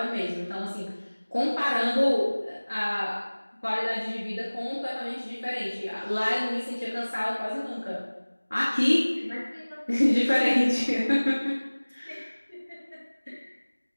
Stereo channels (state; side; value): inverted; both; correlation -1.00